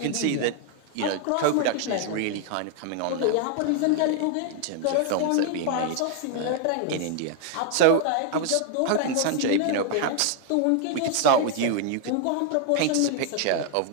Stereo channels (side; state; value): both; different; correlation 0.00